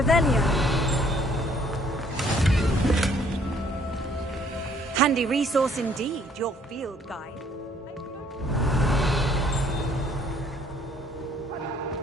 Handy resource indeed, your field guide.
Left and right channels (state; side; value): normal; both; correlation 0.62